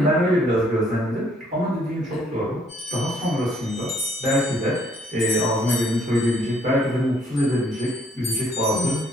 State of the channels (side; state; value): both; normal; correlation 0.65